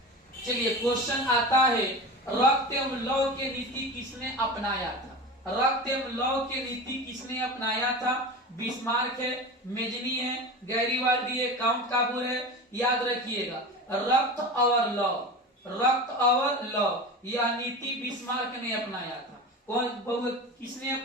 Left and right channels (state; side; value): normal; both; correlation 0.29